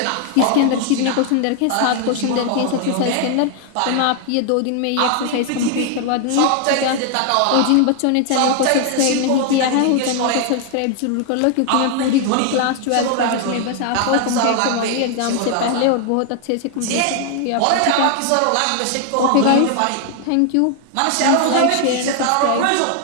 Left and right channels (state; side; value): different; both; correlation 0.00